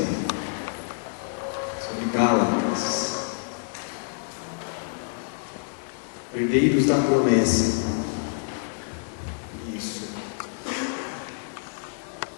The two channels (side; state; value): right; silent; digital silence